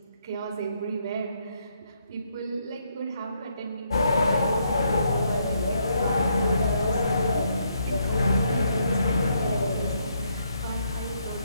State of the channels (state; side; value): inverted; both; correlation -0.74